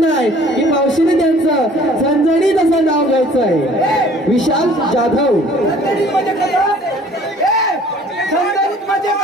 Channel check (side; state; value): both; normal; correlation 0.53